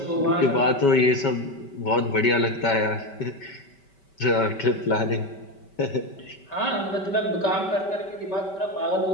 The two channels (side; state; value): right; late; 5.2 ms